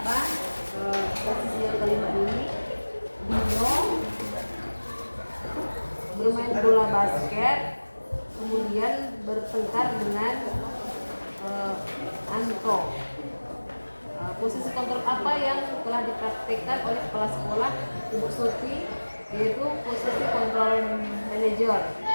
bertengkar dengan Anto. Posisi kontrol apa yang telah dipraktikkan oleh kepala sekolah Ibu Suti, yaitu posisi kontrol manajer.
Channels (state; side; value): inverted; both; correlation -1.00